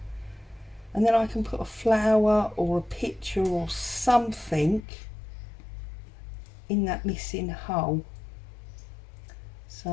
And then I can put a flower or a picture or something in that missing hole.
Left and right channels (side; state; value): right; drops out; at 4.9 s